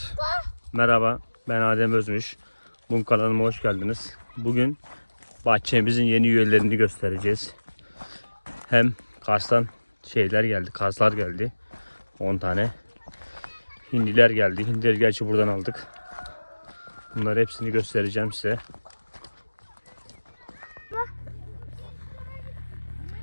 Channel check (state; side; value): inverted; both; correlation -1.00